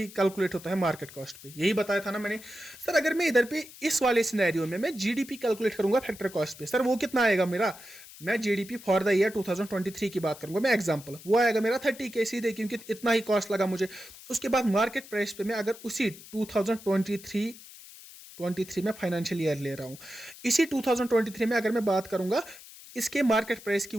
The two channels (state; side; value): noise; left; hiss, 18 dB below the sound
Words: कैलकुलेट होता है मार्केट कॉस्ट पे, यही बताया था ना मैंने। सर अगर मैं इधर पे इस वाले सिनेरियो में मैं जीडीपी कैलकुलेट करूंगा फैक्टर कॉस्ट पे, सर वो कितना आएगा मेरा? मैं जीडीपी फॉर द ईयर 2023 की बात करूंगा मैं, एग्जांपल, वो आएगा मेरा 30K सीधे, क्योंकि इतना ही कॉस्ट लगा मुझे। उसके बाद मार्केट प्राइस पे मैं अगर उसी 2023 में फाइनेंशियल ईयर ले रहा हूं, इसी 2023 में अगर मैं बात करूंगा, इसके मार्केट प्राइस की